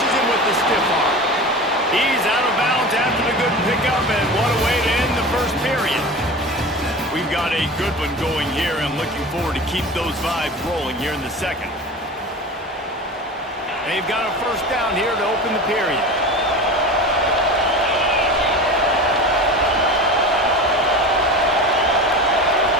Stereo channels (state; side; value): normal; both; correlation 0.32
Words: him with the stiff arm. He's out of bounds after the good pickup, and what a way to end the first period. We've got a good one going here. I'm looking forward to keep those vibes rolling here in the second. They've got a 1st down here to open the period.